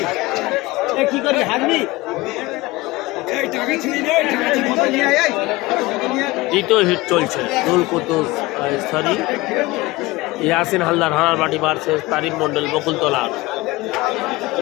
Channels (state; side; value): quieter; right; 20.8 dB